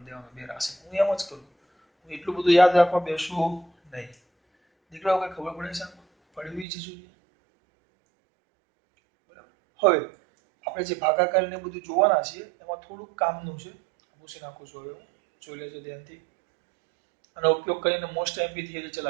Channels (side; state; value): left; drops out; at 6.7 s